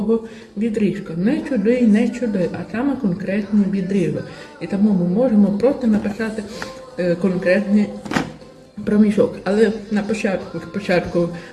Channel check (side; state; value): both; identical; correlation 1.00